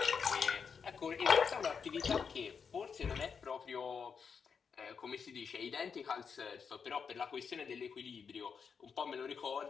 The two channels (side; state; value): right; quieter; 6.2 dB